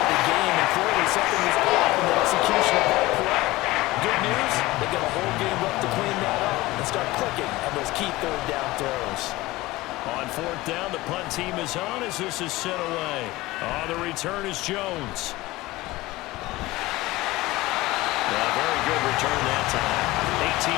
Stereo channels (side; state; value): right; quieter; 19.2 dB